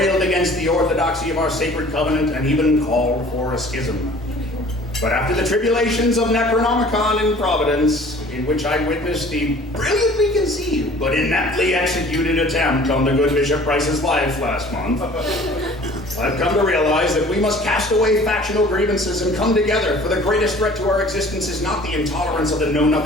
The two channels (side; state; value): both; normal; correlation 0.49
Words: against the orthodoxy of our sacred covenant and even called for a schism. But after the tribulations of Necronomicon in Providence, in which I witnessed the brilliantly conceived but ineptly executed attempt on the good Bishop Price's life last month, I've come to realize that we must cast away factional grievances and come together, for the greatest threat to our existence is not the intolerance of the